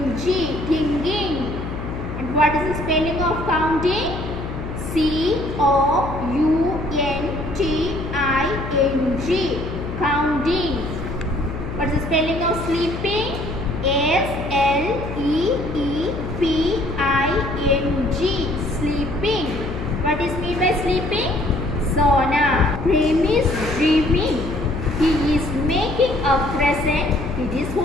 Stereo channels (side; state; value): left; noise; hum, 7 dB below the sound